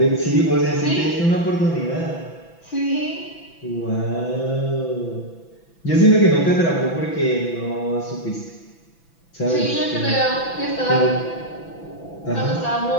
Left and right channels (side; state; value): right; late; 6.0 ms